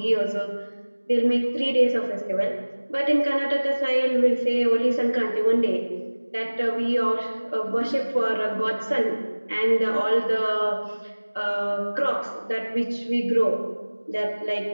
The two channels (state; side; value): inverted; both; correlation -1.00